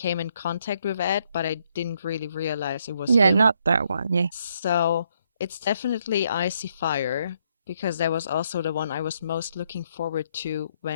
in contact with Ed, but I didn't really realize it was Yeah, him. not that one. Yeah. So it's definitely Icy Fire because that was also the one I was most looking forward to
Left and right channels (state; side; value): inverted; both; correlation -0.73